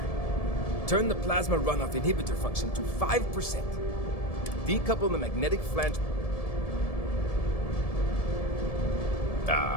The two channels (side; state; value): right; late; 1.7 ms